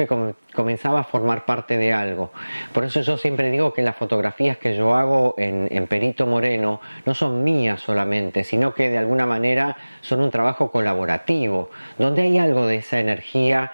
comenzaba a formar parte de algo. Por eso yo siempre digo que las fotografías que yo hago en Perito Moreno no son mías solamente, sino que de alguna manera son un trabajo colaborativo, donde hay algo de esa energía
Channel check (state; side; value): inverted; both; correlation -1.00